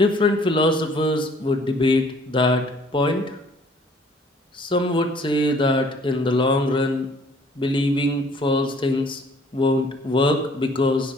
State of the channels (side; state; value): both; normal; correlation 0.57